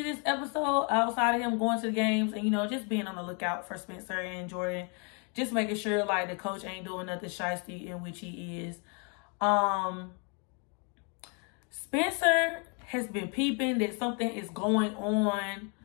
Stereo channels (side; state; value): right; quieter; 36.5 dB